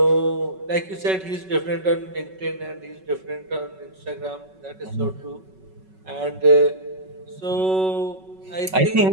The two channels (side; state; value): left; late; 5.3 ms